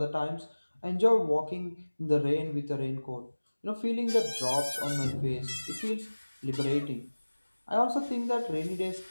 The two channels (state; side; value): inverted; both; correlation -1.00